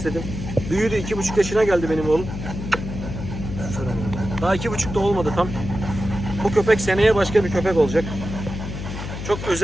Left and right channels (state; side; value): noise; left; hum, 7 dB below the sound